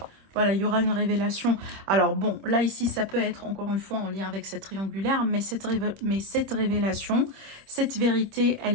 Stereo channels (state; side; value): late; left; 26 ms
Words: Voilà, il y aura une révélation. Alors bon, là ici, ça peut être encore une fois en lien avec cette triangulaire, mais cette révélation, cette vérité,